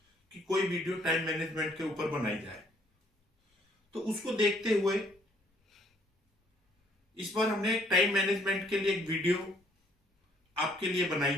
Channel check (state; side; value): normal; both; correlation 0.65